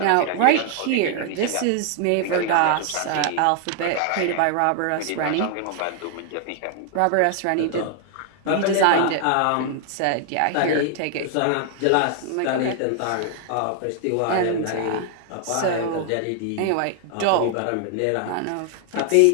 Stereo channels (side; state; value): both; different; correlation 0.00